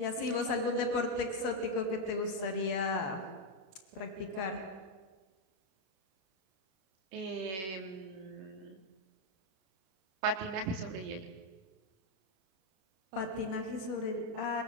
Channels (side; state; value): left; late; 33 ms